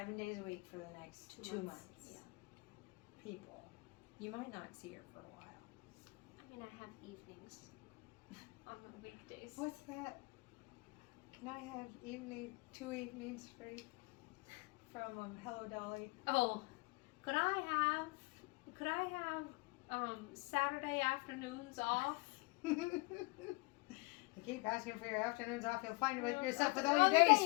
days a week for the next 2 months. Yeah. People, you might not see her for a while. I mean, I have evenings on the weekdays. What's that? Can I have 2 evenings free from Hello Dolly? Oh, could I have Saturday afternoons off? You keep asking for your afternoons off, you'll find Well, yourself with all all the your days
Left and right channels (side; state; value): right; quieter; 27.0 dB